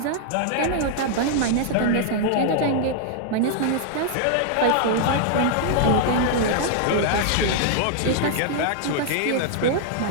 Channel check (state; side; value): different; both; correlation -0.01